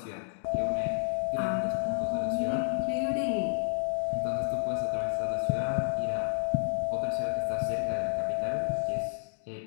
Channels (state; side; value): silent; right; digital silence